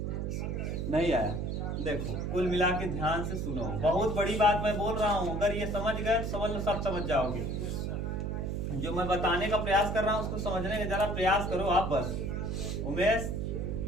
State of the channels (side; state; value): right; noise; hum, 2 dB below the sound